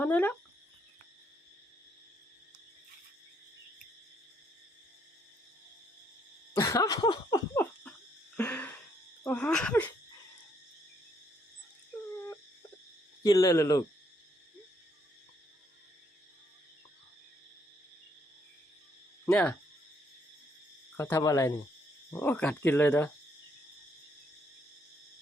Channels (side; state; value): both; normal; correlation 0.71